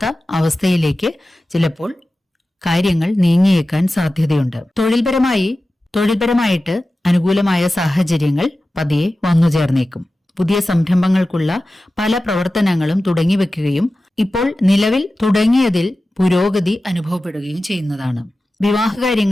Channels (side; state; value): both; normal; correlation 0.95